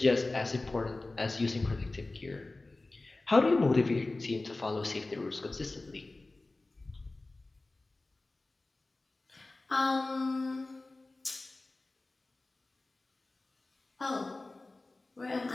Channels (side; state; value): right; quieter; 3.1 dB